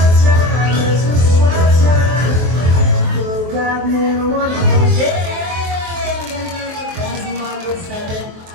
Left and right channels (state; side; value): late; left; 23 ms